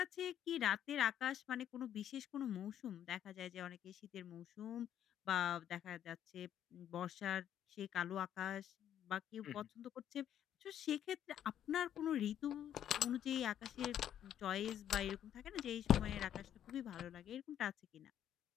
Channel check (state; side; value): quieter; right; 10.3 dB